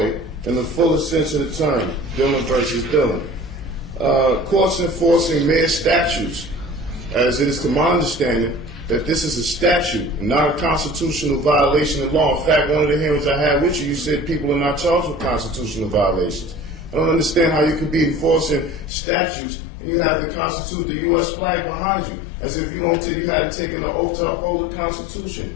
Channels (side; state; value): right; drops out; at 18.9 s